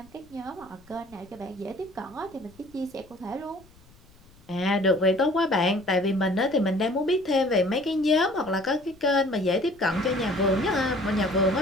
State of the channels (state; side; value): noise; left; rumble, 27 dB below the sound